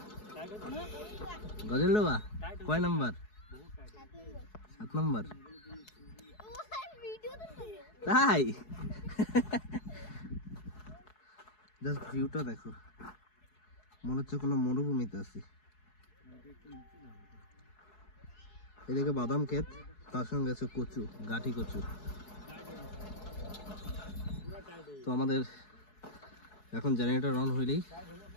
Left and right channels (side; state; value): right; late; 4.7 ms